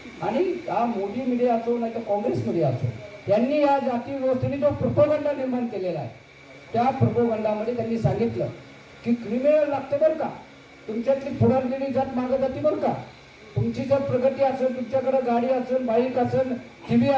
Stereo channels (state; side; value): identical; both; correlation 1.00